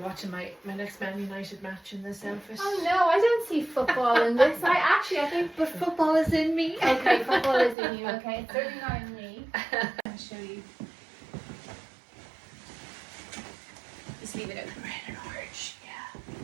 my next Man United match in this outfit. Oh no, I don't see football in this. I think, But football is in me. okay, football is in you. Okay, it's certainly not in me. I'll show you. Just leave it open. Red and orange, yeah.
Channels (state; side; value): drops out; left; at 7.8 s